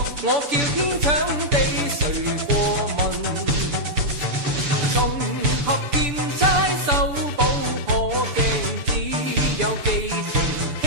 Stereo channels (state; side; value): late; left; 6.9 ms